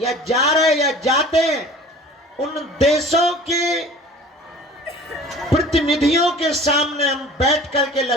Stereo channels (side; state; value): both; normal; correlation 0.44